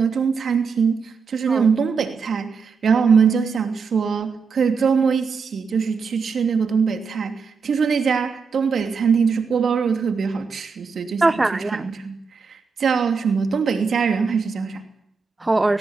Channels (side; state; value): left; quieter; 5.3 dB